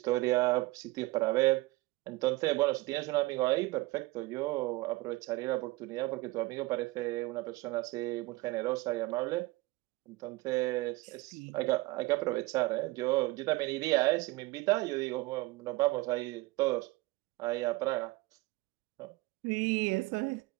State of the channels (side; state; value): left; quieter; 21.1 dB